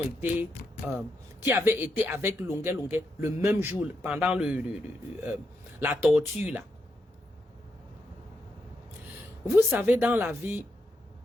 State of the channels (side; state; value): both; normal; correlation 0.83